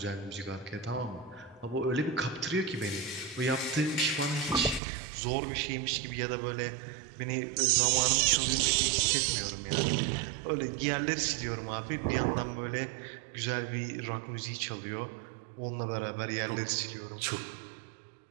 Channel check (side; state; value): left; drops out; at 4.8 s